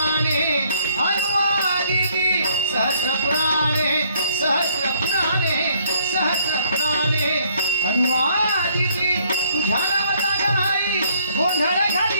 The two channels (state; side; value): inverted; both; correlation -0.64